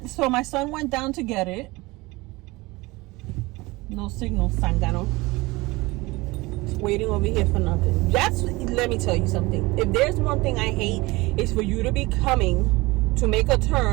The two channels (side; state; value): left; quieter; 22.1 dB